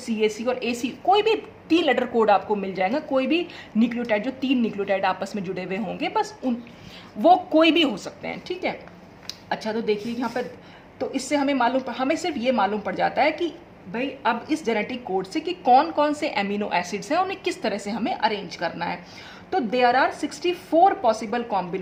और AC कोई भी 3-letter कोड आपको मिल जाएगा। कोई भी न्यूक्लियोटाइड, जो 3 न्यूक्लियोटाइड आपस में जुड़े हुए होंगे, बस वो कोई भी हो सकते हैं। ठीक है, अच्छा, तो देखिए यहाँ पर, तो इससे हमें सिर्फ ये मालूम पड़ जाता है कि भाई अब इस जेनेटिक कोड से कि कौन कौन से अमीनो एसिड्स हैं, उन्हें किस तरह से हमें अरेंज करना है। तो there are 64 possible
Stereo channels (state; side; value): identical; both; correlation 1.00